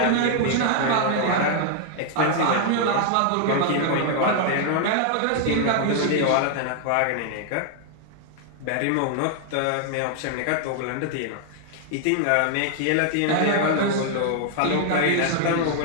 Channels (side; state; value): both; different; correlation 0.00